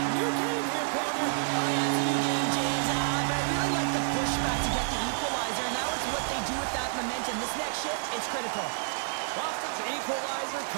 New game here, Pounder. Oh, yeah, it's a new game, James. But I really like the pushback to get the equalizer. Now it's what they do with that momentum. This next shift, it's critical. Boston's equalizer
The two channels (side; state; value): left; silent; digital silence